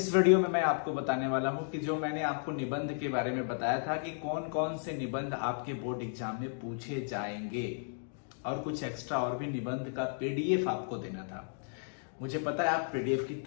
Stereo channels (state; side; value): silent; right; digital silence